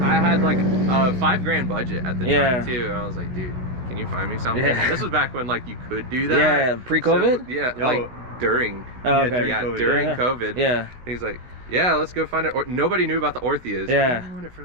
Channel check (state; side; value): late; left; 16 ms